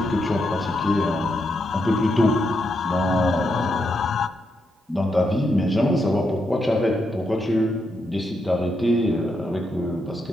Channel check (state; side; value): normal; both; correlation 0.82